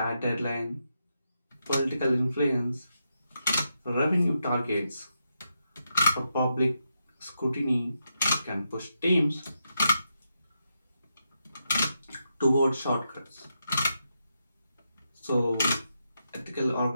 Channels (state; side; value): inverted; both; correlation -0.84